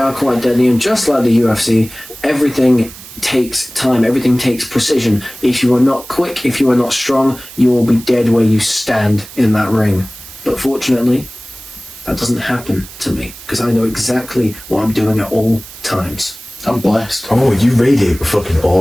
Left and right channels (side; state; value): right; noise; hiss, 17 dB below the sound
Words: quite deadly, and just like the UFC, everything takes time, everything takes precision. If you are not quick, if you are not strong, you will be dead where you stand in that ring. But fortunately, that doesn't happen to me, because I know exactly what I'm doing at all times. I'm blessed. Oh, you radiate with fucking